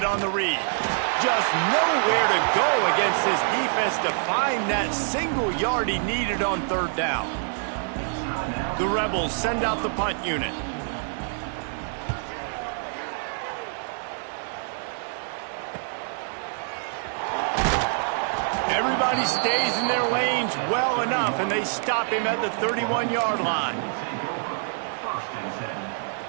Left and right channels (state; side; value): silent; left; 61 dB below the other